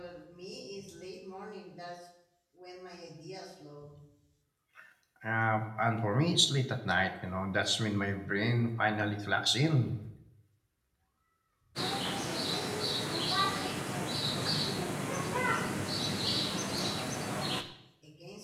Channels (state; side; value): identical; both; correlation 1.00